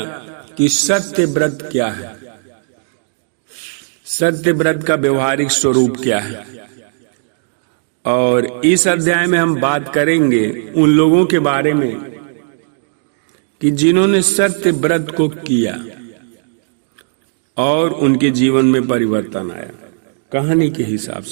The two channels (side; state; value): left; silent; digital silence